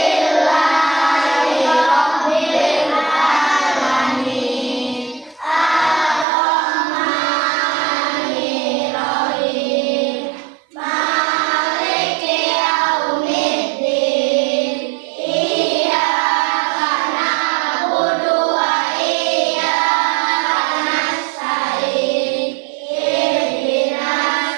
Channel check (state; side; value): drops out; left; at 6.2 s